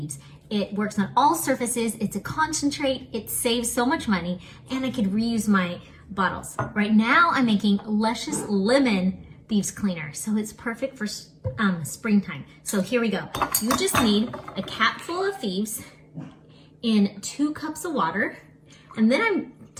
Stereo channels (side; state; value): both; identical; correlation 1.00